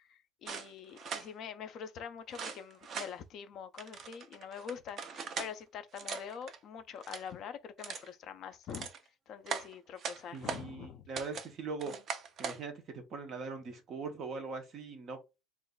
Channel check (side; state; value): both; normal; correlation 0.46